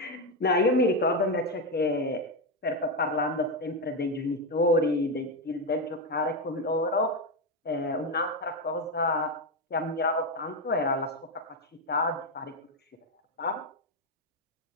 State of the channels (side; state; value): both; normal; correlation 0.09